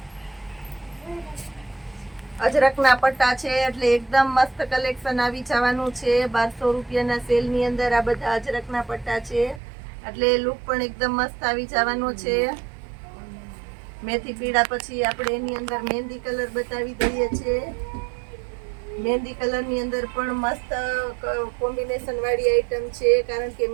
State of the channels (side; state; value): left; drops out; at 9.6 s